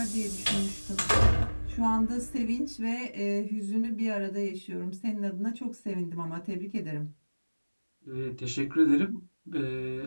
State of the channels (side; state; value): both; inverted; correlation -1.00